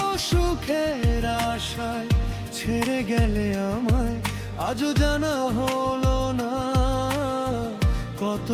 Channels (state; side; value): identical; both; correlation 1.00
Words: সুখের আশায় ছেড়ে গেলে আমায়, আজও জানা হলো না।